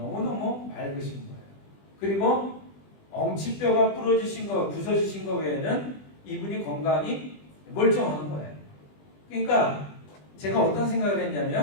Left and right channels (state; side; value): late; right; 20 ms